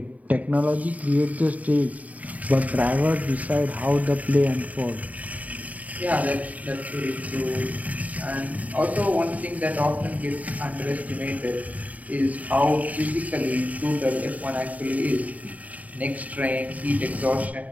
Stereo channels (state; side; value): late; left; 0.072 ms